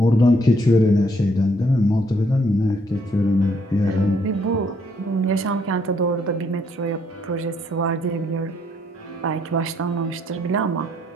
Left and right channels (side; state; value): both; normal; correlation 0.69